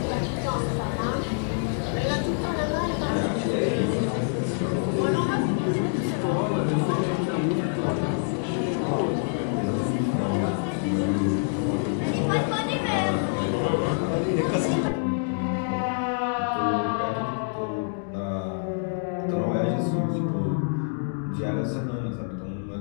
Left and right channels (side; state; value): right; silent; digital silence